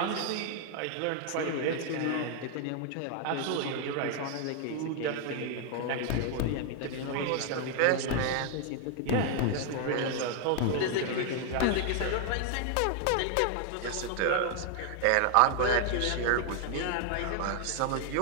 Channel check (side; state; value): both; different; correlation 0.00